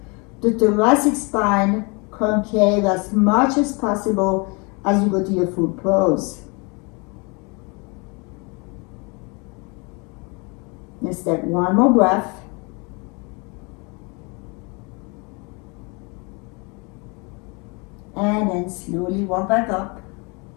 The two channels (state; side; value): quieter; right; 30.4 dB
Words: the thoracic spine concave as much as possible as you go to your full pose. Let's take 1 more breath. And then slowly walk back up.